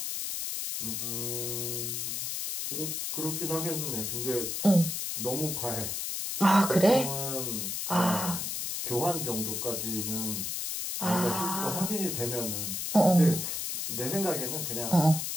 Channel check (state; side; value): noise; left; hiss, 3 dB below the sound